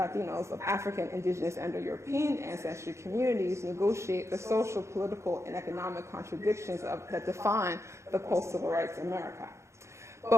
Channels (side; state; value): left; late; 0.14 ms